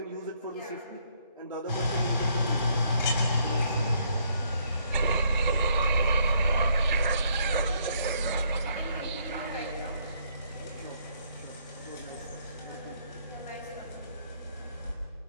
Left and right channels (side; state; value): both; inverted; correlation -0.68